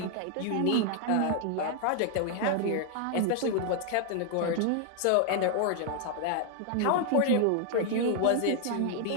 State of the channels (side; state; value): both; different; correlation 0.00